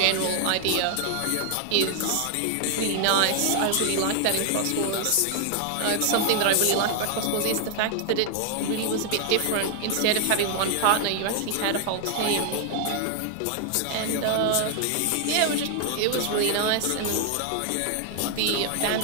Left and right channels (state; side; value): different; both; correlation 0.00